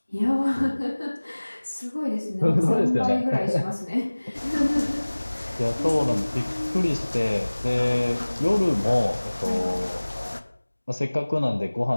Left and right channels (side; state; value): both; inverted; correlation -1.00